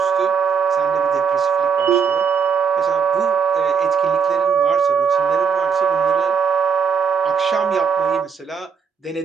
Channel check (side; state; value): left; quieter; 6.3 dB